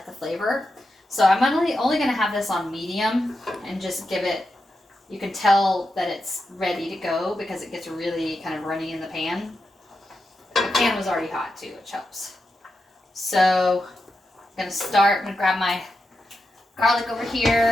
the flavor. So I'm only going to have this on medium and just give it, you can tell that it's ready to go because it gets really kind of runny in the pan. The pan was already hot too, which helps. So I'm going to grab my garlic over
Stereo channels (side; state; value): both; normal; correlation 0.88